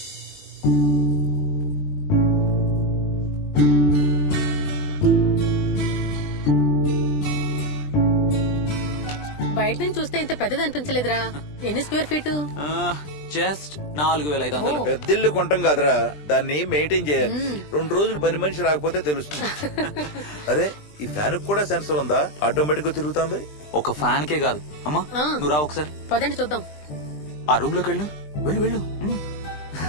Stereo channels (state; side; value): late; right; 20 ms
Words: బయట నుంచి చూస్తే ఇంత పెద్దది అనిపించలేదురా. ఎన్ని స్క్వేర్ ఫీట్? జస్ట్ 4500. పెద్దిల్లు కొంటాం కాదురా, దాన్ని మెయింటైన్ చేయాలి. 2 రోజులు పని మనిషి రాకపోతే తెలుస్తుంది. అరే ఈ ఫ్యాన్ కూడా సెన్సర్ ఉందా? ఆటోమేటిక్ గా తిరుగుతుంది. ఒక ఫ్యాన్ కే కాదు అమ్మా, నువ్వు రా ఒకసారి. పదండి చూద్దాం. ఆ రూమ్ లోకి వెళ్ళు, వెళ్ళు వెళ్ళు.